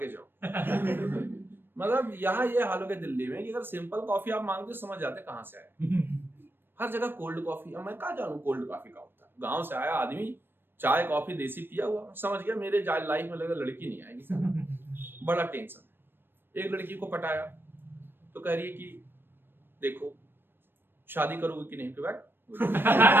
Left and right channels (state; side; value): late; left; 0.099 ms